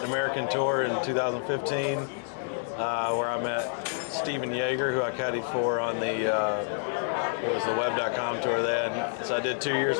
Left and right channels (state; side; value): silent; right; digital silence